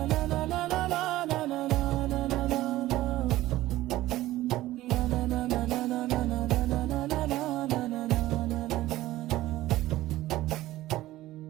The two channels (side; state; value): left; quieter; 16.1 dB